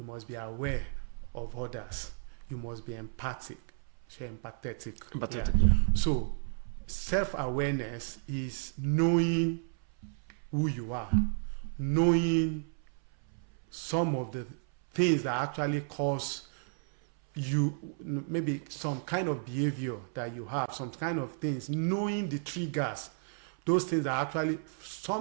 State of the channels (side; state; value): left; silent; 56 dB below the other